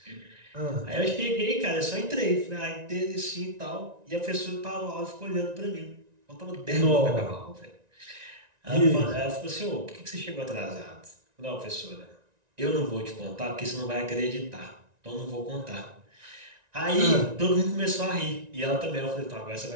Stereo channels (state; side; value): late; left; 1.9 ms